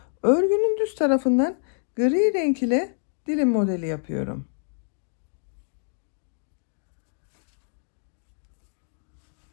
örgünün düz tarafından gri renk ile dilim modeli yapıyorum.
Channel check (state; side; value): silent; right; digital silence